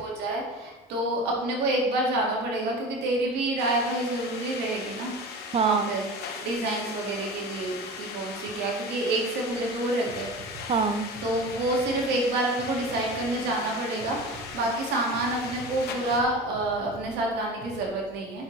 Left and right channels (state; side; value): normal; both; correlation 0.33